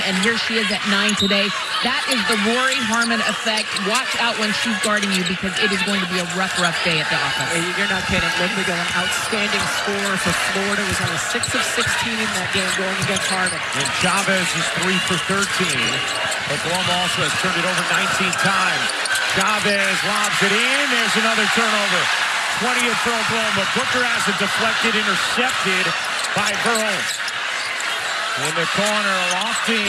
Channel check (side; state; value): both; identical; correlation 1.00